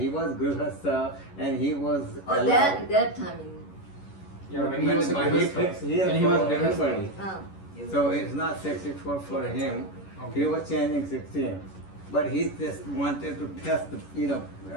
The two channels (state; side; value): late; right; 11 ms